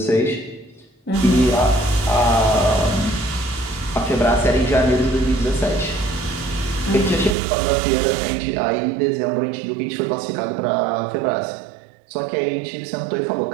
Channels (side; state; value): left; drops out; at 7.4 s